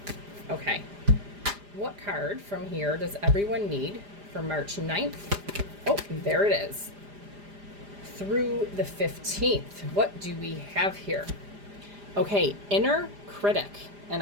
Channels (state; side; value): late; left; 4.9 ms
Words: Okay. What card from here does everyone need for March 9th? Oh, there it is. Through the 15th. What do we have here? Okay, inner critic. And